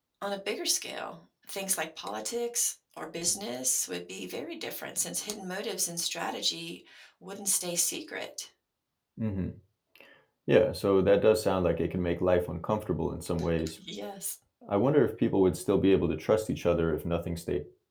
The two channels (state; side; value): identical; both; correlation 1.00